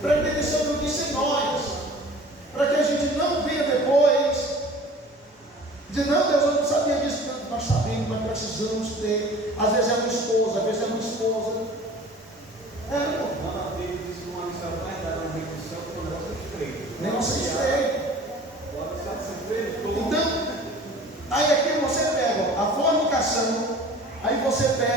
para entender se não disse em nós, para que a gente não venha depois dizer: não, Deus, eu não sabia disso. Não, nós sabemos, nós precisamos ter. Às vezes é uma esposa, às vezes é uma esposa. Negócio estreito. Então, aí aqui você pega a fornicação, aí você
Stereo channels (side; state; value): both; normal; correlation 0.44